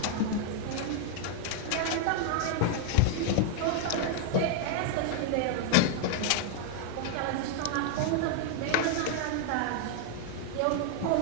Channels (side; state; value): both; different; correlation 0.00